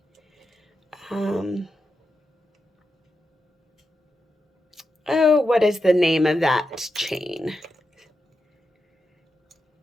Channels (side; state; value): both; normal; correlation 0.88